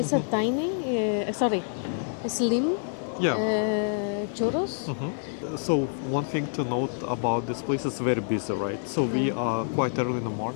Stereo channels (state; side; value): silent; right; digital silence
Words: a tiny, slim Yeah. churros. So one thing to note about this place is very busy, right? So we are quite early in the